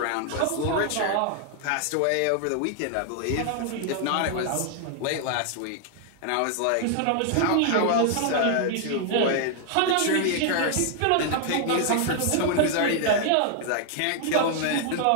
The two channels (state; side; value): different; both; correlation 0.00